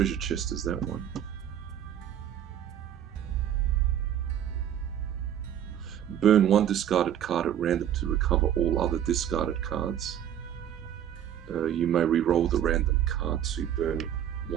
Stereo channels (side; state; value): left; quieter; 10.2 dB